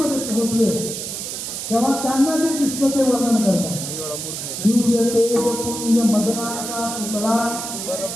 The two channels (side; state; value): right; noise; hiss, 6 dB below the sound